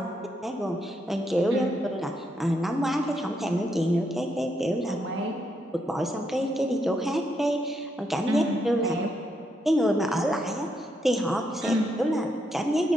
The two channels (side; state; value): both; normal; correlation 0.79